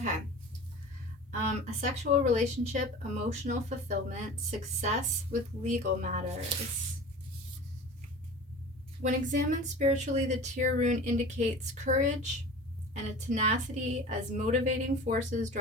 A sexual relationship, emotional fulfillment, success with legal matters. When examined spiritually, the Tyr rune indicates courage and a tenacity as motivating forces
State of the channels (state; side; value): normal; both; correlation 0.37